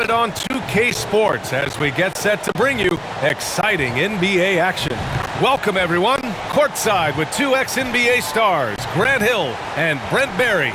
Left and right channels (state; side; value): identical; both; correlation 1.00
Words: it on 2K Sports as we get set to bring you exciting NBA action. Welcome, everyone. Courtside with two ex-NBA stars, Grant Hill and Brent Barry.